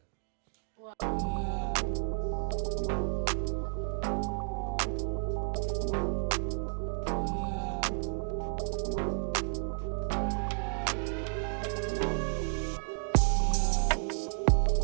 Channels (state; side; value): silent; left; 56 dB below the other